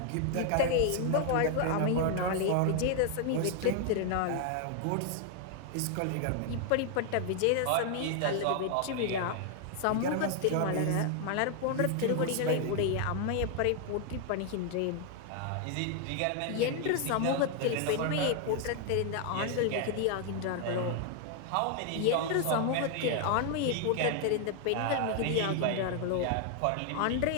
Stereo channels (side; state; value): both; different; correlation 0.00